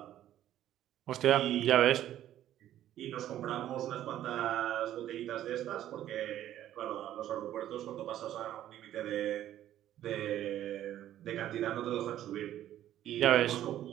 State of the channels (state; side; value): quieter; left; 12.2 dB